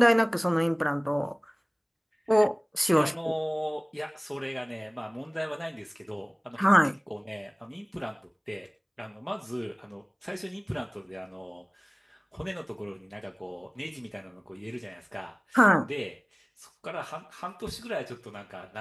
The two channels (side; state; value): both; identical; correlation 1.00